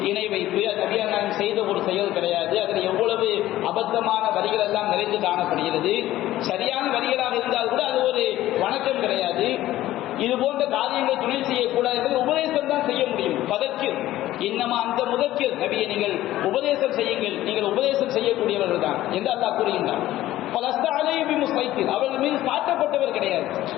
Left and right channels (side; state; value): right; quieter; 14.8 dB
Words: இணை வைப்பு, நபிகள் நாயகம் செய்த ஒரு செயல் கிடையாது, அதில் எவ்வளவு அபத்தமான வரிகள் எல்லாம் நிறைந்து காணப்படுகிறது. சரியான வரிகளாக இருந்தால் கூட அது ஒரு வணக்கம் கிடையாது. இது போன்ற காரியங்களை துணை செய்யக்கூடாது என்பதை உபதேசம் தான் செய்ய முடியும். பதக்கிர் இன்னமா அந்த முதக்கிர், நபியை நீங்கள் உபதேசம் செய்யுங்கள், நீங்கள் உபதேசம் செய்யக்கூடியவர்கள் தான் என்று அல்லாஹ் கூறுகின்றார். அவர்கள் மீது சாட்டப்பட்டவர் கிடையாது.